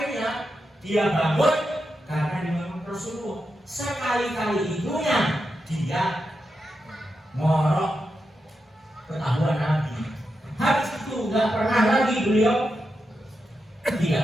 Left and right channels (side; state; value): both; normal; correlation 0.87